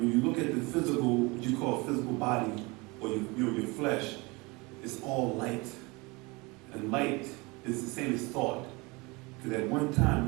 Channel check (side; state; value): left; quieter; 25.8 dB